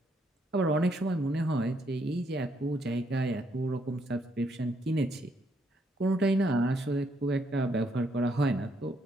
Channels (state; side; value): normal; both; correlation 0.73